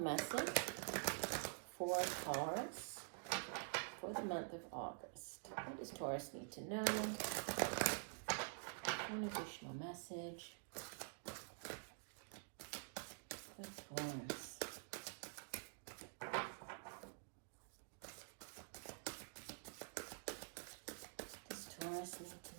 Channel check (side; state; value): left; silent; digital silence